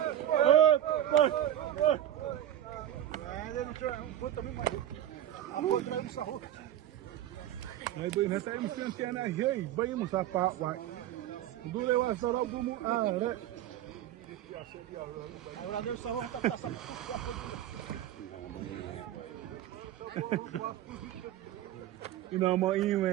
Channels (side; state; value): left; quieter; 11.9 dB